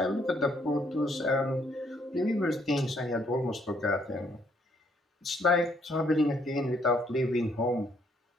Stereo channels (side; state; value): both; normal; correlation 0.68